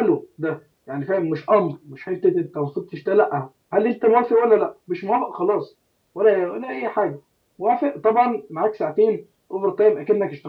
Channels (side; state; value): both; identical; correlation 1.00